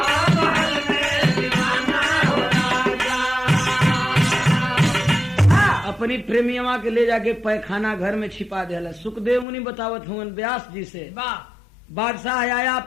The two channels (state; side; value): drops out; right; at 9.5 s